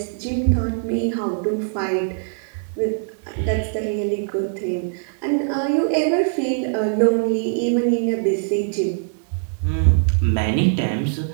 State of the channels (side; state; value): left; silent; digital silence